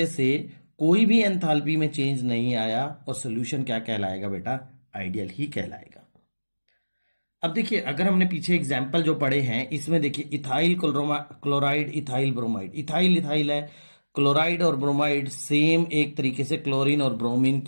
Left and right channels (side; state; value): both; inverted; correlation -1.00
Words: से कोई भी एंथैल्पी में चेंज नहीं आया, और सोल्यूशन क्या कहलाएगा बेटा? आइडियल ही कहलाएगा। अब देखिए, अगर हमने पीछे एग्जाम्पल जो पढ़े हैं इसमें देखिए, ethyl chloride, ethyl bromide. Ethyl ethyl है, क्लोराइड और ब्रोमाइड सेम एक तरीके से क्लोरीन और ब्रोमीन